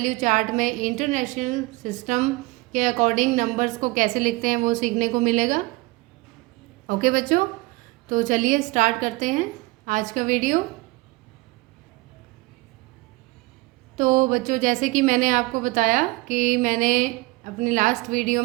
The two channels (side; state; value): left; quieter; 22.6 dB